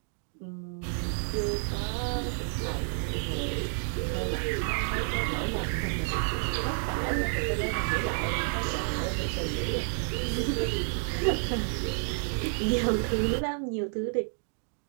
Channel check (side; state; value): left; silent; 58 dB below the other